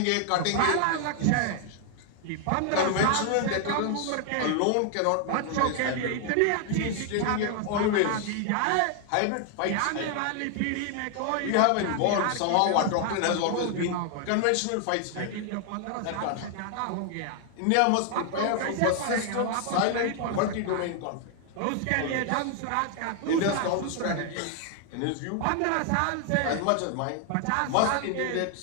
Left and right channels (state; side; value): different; both; correlation 0.00